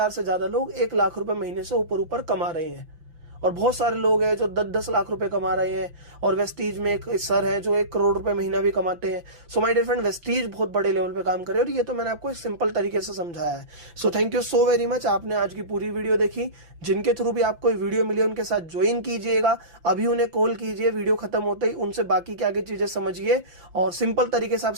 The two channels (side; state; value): left; late; 5.9 ms